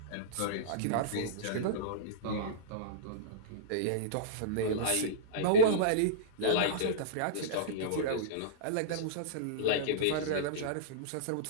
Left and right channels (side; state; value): both; different; correlation -0.04